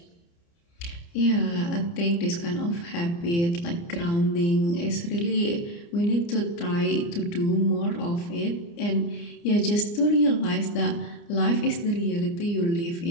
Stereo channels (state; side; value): late; right; 29 ms